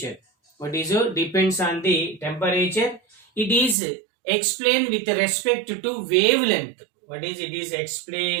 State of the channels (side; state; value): left; drops out; at 3.8 s